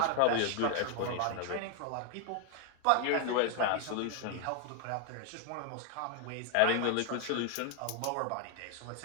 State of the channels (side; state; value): both; different; correlation 0.01